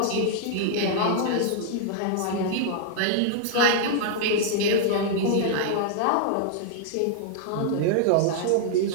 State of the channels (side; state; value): both; different; correlation -0.01